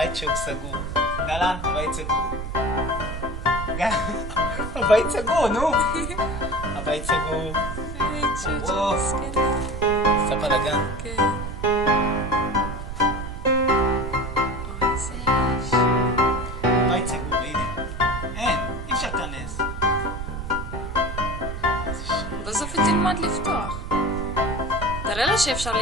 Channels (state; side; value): noise; right; rumble, 7 dB below the sound